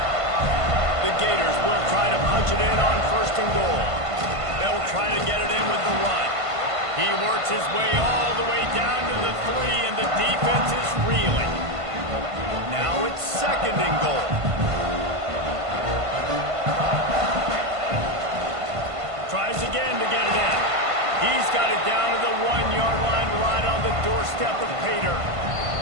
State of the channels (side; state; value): left; late; 1.5 ms